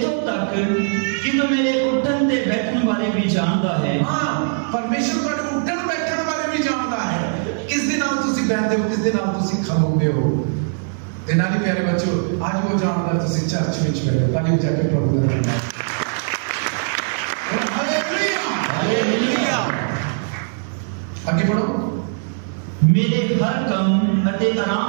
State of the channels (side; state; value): left; silent; digital silence